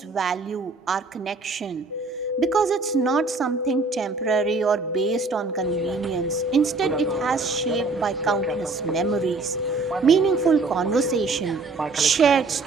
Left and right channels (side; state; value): left; quieter; 3.7 dB